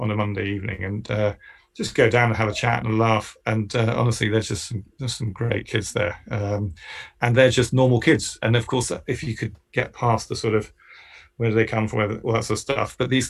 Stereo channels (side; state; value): both; identical; correlation 1.00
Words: a Monday evening, and just go down and have a chat and a laugh. And honestly, there's some great kids there, and they're just normal kids. And of course, if you could get past the sort of where do they come from, all that sort of stuff. But these